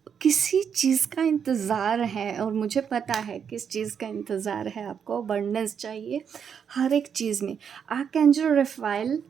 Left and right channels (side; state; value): left; quieter; 7.4 dB